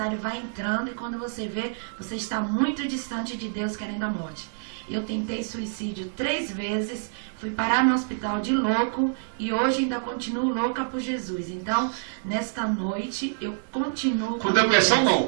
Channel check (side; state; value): left; silent; digital silence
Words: vai entrando, e quando você vê, você está muito distante de Deus, querendo a morte. Eu tentei suicídio 3 vezes, fui parar no hospital de louco, e hoje ainda continuo louca por Jesus. Então, nesta noite, eu continuo... Com depressão